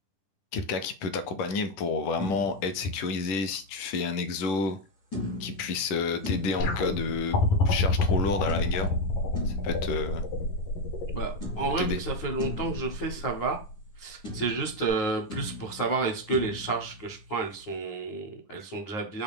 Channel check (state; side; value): late; right; 10 ms